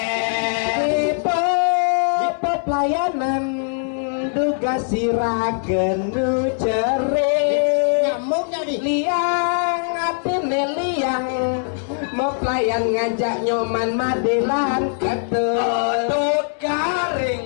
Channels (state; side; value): silent; right; digital silence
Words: pelayanan duga siragen nu cere nyamuknya di liang atine liang mau pelayan ngajak nyoman madelan ketut